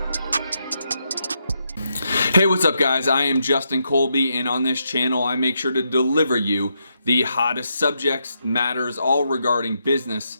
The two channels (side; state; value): both; inverted; correlation -0.81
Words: Hey, what's up guys? I am Justin Colby, and on this channel I make sure to deliver you the hottest subjects, matters, all regarding